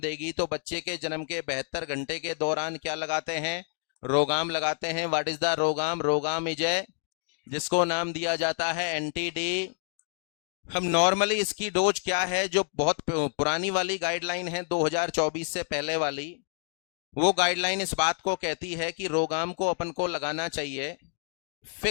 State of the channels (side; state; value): right; silent; 59 dB below the other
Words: तो बच्चे के जन्म के 72 घंटे के दौरान क्या लगाते हैं? रोगाम लगाते हैं। What is the RhoGAM? RhoGAM is a, जिसको नाम दिया जाता है एंटी डी। हम नॉर्मली इसकी डोज क्या है, जो बहुत पुरानी वाली गाइडलाइन है 2024 से पहले वाली, वो गाइडलाइन इस बात को कहती है कि रोगाम को अपन को लगाना चाहिए,